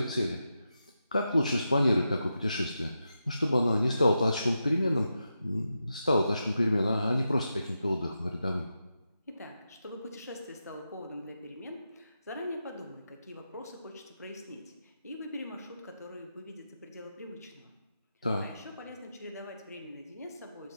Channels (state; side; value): inverted; both; correlation -0.88